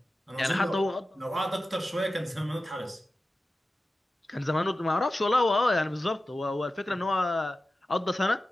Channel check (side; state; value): both; normal; correlation 0.94